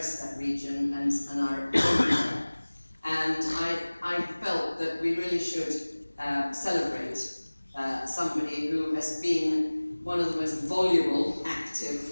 that region and are everywhere. And I felt that we really should celebrate somebody who has been one of the most voluble,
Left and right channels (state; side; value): inverted; both; correlation -1.00